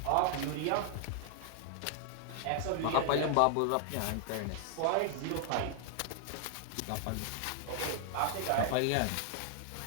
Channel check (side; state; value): both; different; correlation 0.00